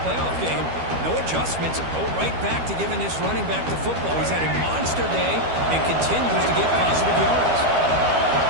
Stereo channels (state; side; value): late; left; 12 ms